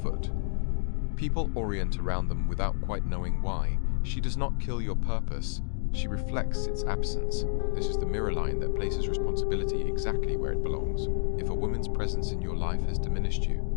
People orient around them without quite knowing why. She does not kill your purpose, she reflects its absence. This is the mirror line that places responsibility exactly where it belongs. If a woman's presence in your life has diminished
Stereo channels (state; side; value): silent; right; digital silence